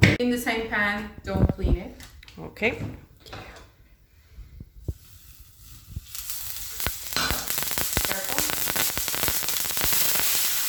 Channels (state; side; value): identical; both; correlation 1.00